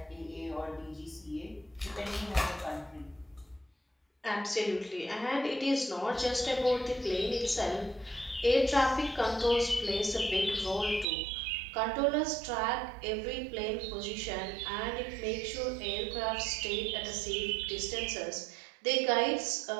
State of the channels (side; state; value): left; drops out; at 11.1 s